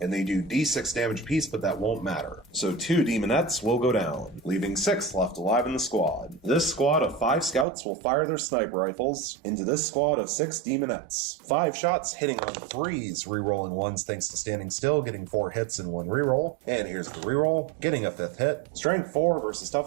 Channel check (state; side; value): drops out; left; at 7.7 s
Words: And they do D6 damage apiece, but that won't matter. So 2 demonettes will go down, leaving 6 left alive in the squad. This squad of 5 scouts will fire their sniper rifles into this squad of 6 demonettes. 5 shots hitting on 3s, re-rolling 1s thanks to standing still, getting 4 hits and 1 re-roll. And here's the re-roll, getting a 5th hit. Strength 4 versus